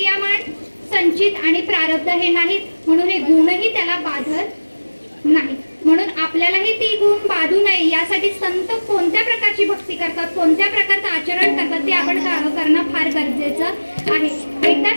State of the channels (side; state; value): both; inverted; correlation -1.00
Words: संचित आणि प्रारब्ध हे नाहीत, म्हणून हे गुणही त्याला बाधत नाही. म्हणून आपल्यालाही ती गुण बाधू नये यासाठी संत कोणत्या प्रकारची भक्ती करतात, कोणत्या प्रकारचं आचरण करतात, ते आपण करणं फार गरजेचं आहे. एकदा